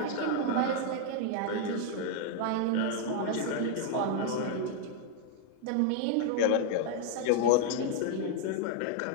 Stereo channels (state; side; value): different; both; correlation 0.00